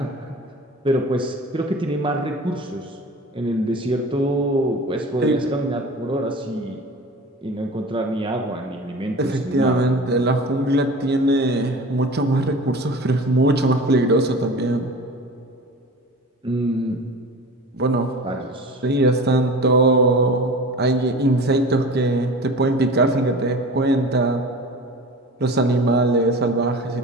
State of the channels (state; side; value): normal; both; correlation 0.37